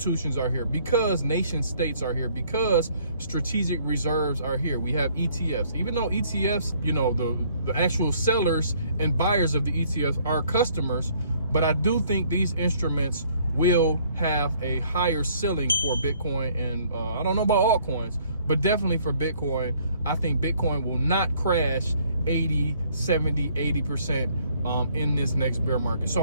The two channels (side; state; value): both; inverted; correlation -0.62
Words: are here, because nation states are here, because strategic reserves are here. We have ETFs, even though ETFs, the actual sellers and buyers of the ETFs are customers, but I do think these instruments will have a higher ceiling for Bitcoin, and I don't know about altcoins, but definitely for Bitcoin. I think Bitcoin will not crash 80, 70, 80% in this next bear market.